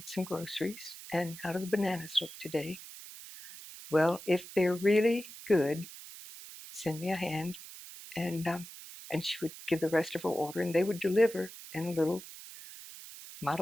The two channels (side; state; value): right; noise; hiss, 14 dB below the sound